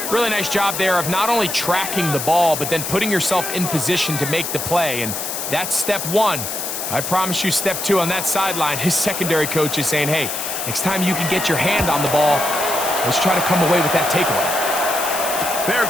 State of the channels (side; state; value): left; noise; hiss, 4 dB below the sound